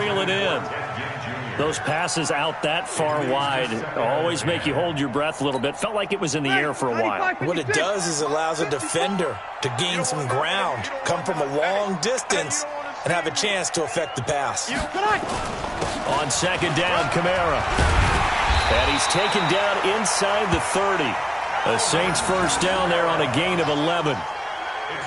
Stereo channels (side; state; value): both; identical; correlation 1.00